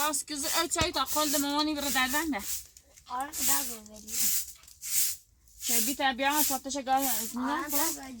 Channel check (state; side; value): identical; both; correlation 1.00